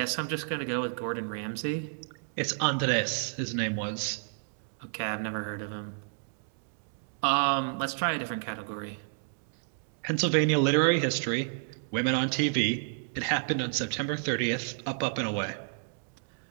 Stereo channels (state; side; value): silent; left; digital silence